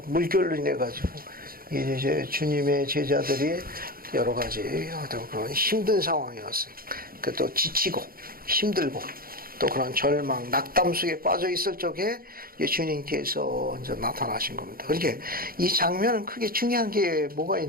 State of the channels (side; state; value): left; late; 0.42 ms